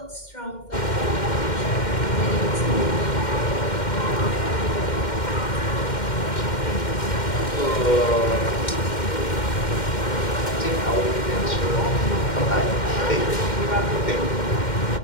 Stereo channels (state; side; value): late; right; 2.1 ms